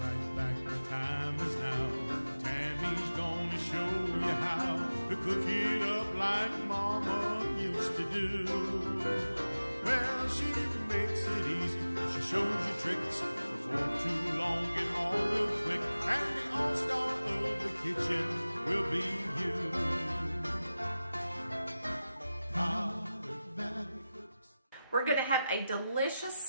back, the time is now. Tammy's gonna show you how to cook it up like Mama used to do. Well, she makes it easy, she shows you tricks. Before too long, get all real quick, and the all-star of the kitchen will be you. We're going to have a delicious,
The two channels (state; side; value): inverted; both; correlation -0.95